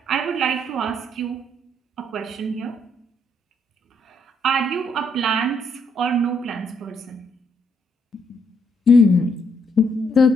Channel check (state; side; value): normal; both; correlation 0.73